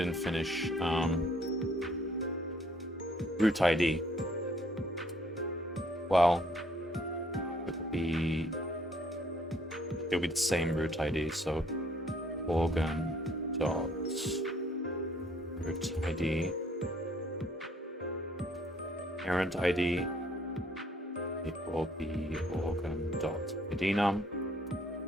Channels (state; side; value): normal; both; correlation 0.63